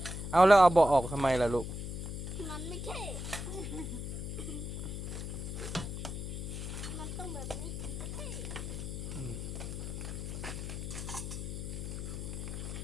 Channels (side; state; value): left; noise; hum, 5 dB below the sound